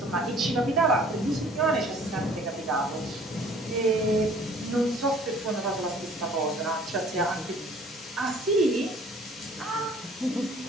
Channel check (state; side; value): normal; both; correlation 0.53